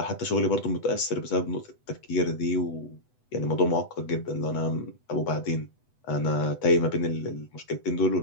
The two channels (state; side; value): late; right; 8.0 ms